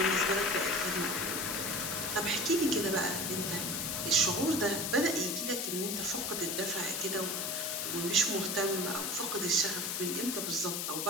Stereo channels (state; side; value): noise; left; hiss, 1 dB below the sound